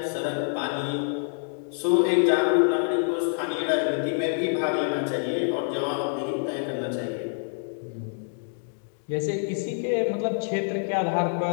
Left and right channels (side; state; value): right; silent; digital silence